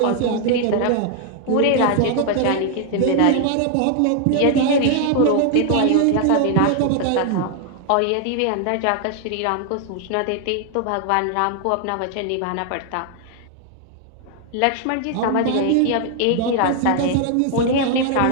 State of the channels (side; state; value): both; different; correlation 0.00